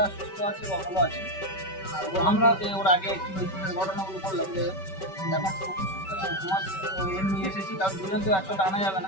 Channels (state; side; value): late; right; 5.2 ms